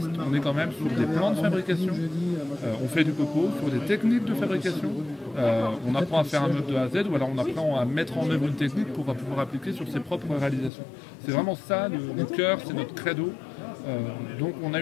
on est quand même sur des plans de fabrication. On fait du copeau, sur des techniques de fabrication. On apprend à faire un meuble de A à Z, ou alors on apprend à mettre en œuvre une technique pour pouvoir appliquer sur ses propres réalisations. C'est vraiment ça, le cœur, c'est notre credo. Donc on a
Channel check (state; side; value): drops out; right; at 10.7 s